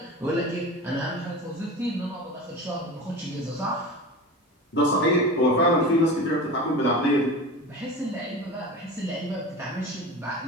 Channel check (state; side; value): normal; both; correlation 0.32